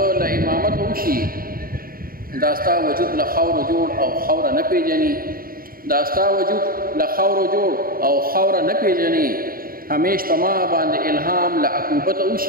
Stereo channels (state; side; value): late; left; 0.42 ms